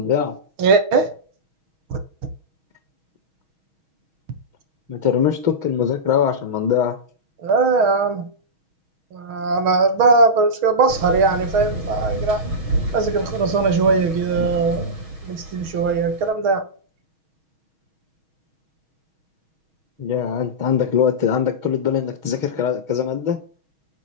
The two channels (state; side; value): late; left; 6.4 ms